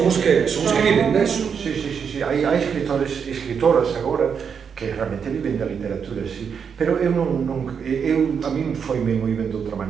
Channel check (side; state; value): left; quieter; 6.8 dB